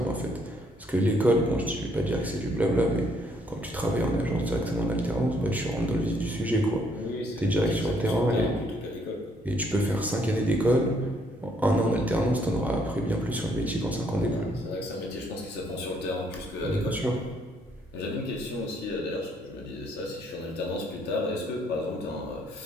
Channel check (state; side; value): normal; both; correlation 0.68